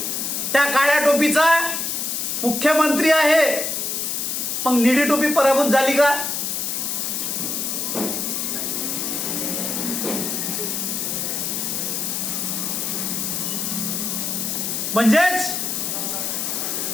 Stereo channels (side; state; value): left; noise; hiss, 1 dB below the sound